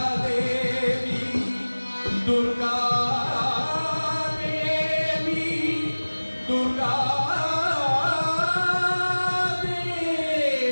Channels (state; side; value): inverted; both; correlation -1.00